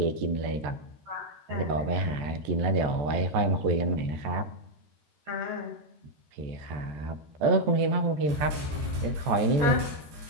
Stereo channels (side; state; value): left; late; 14 ms